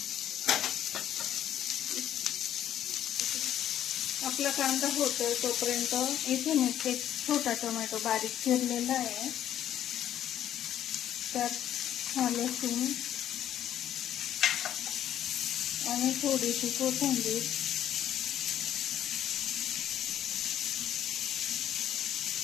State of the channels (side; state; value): right; quieter; 11.2 dB